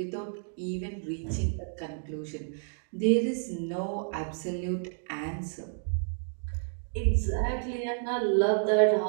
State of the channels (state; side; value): silent; left; digital silence